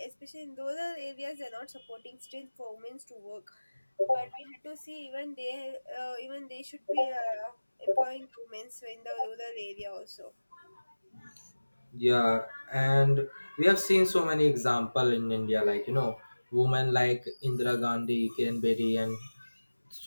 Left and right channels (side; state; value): both; inverted; correlation -1.00